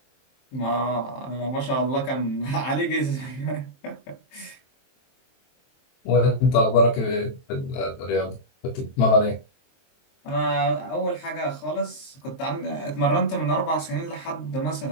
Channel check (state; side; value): late; right; 23 ms